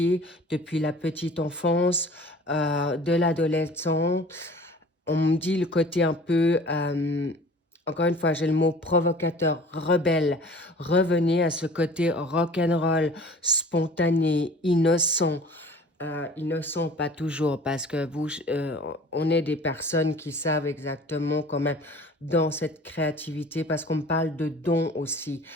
depuis la petite enfance, de l'adolescent. On me dit le côté un peu, encore une fois, j'ai le mot provocateur, rebelle. Revenez à ce côté rock'n'roll, spontané, innocent. Innocent, pas toujours, parce que on est des personnes qui savent exactement quand même dans cette créativité, parce qu'on me parle de dons aussi.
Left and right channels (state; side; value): normal; both; correlation 0.45